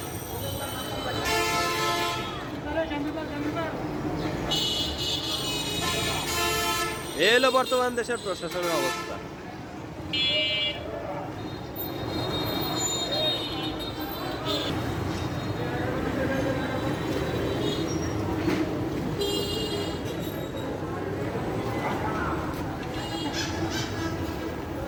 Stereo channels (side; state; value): both; identical; correlation 1.00